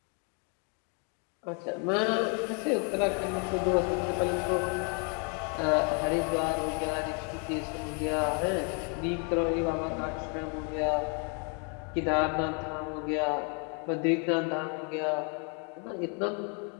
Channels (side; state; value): right; quieter; 37.8 dB